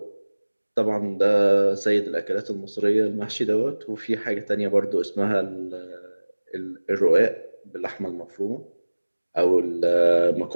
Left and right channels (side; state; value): both; inverted; correlation -1.00